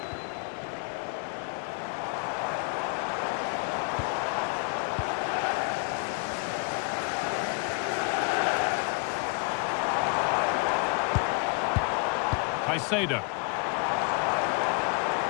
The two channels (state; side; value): quieter; right; 33.0 dB